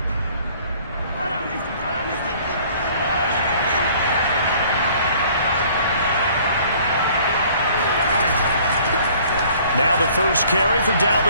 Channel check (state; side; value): inverted; both; correlation -0.55